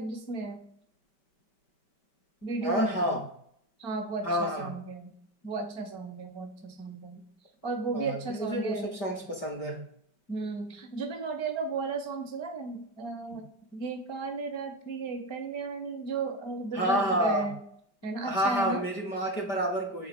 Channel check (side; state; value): right; late; 5.2 ms